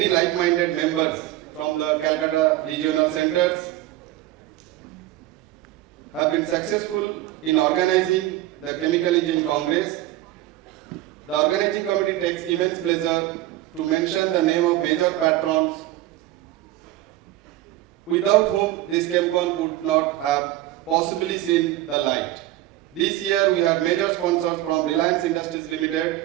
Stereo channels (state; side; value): quieter; left; 15.2 dB